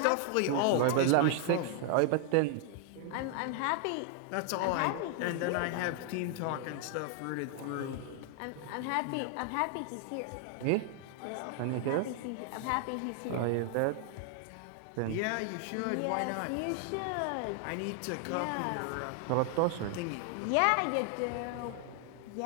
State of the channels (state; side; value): different; both; correlation 0.00